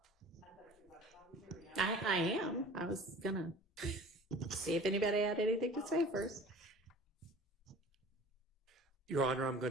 I am. I was gonna see if anybody had anything to say first. Your Honor, I'm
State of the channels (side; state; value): both; normal; correlation 0.44